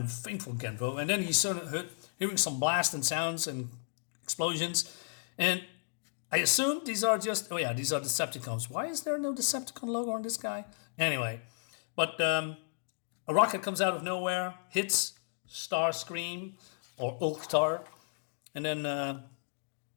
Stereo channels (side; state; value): right; silent; digital silence